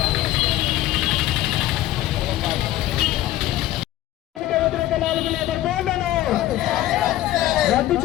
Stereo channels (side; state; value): right; quieter; 14.5 dB